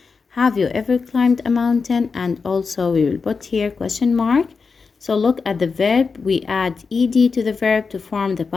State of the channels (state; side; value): quieter; right; 4.9 dB